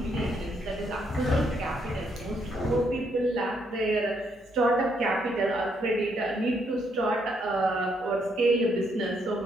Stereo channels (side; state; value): both; normal; correlation 0.74